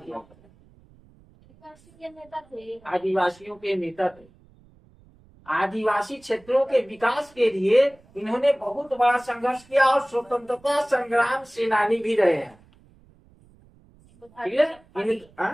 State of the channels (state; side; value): noise; right; rumble, 28 dB below the sound